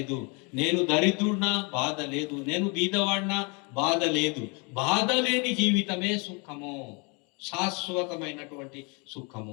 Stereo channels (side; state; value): right; quieter; 31.7 dB